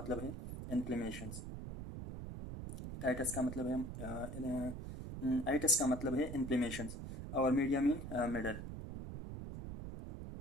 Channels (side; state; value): right; noise; rumble, 8 dB below the sound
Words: है इन्फ्लेमेशंस। टाइटस का मतलब है आइटस का मतलब है इन्फ्लेमेशंस, और मीडिया मीन मिडल।